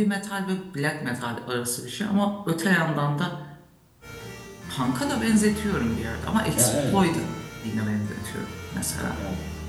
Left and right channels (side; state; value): both; identical; correlation 1.00